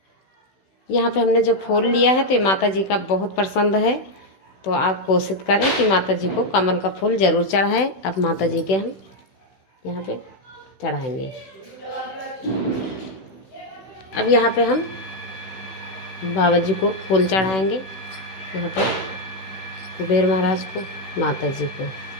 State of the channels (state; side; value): late; right; 16 ms